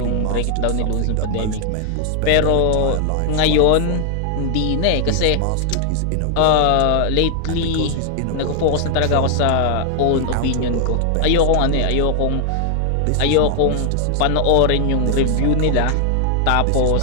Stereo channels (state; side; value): different; both; correlation 0.00